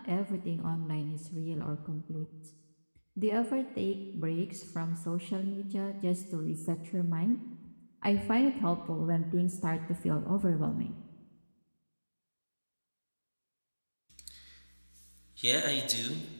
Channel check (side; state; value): both; inverted; correlation -1.00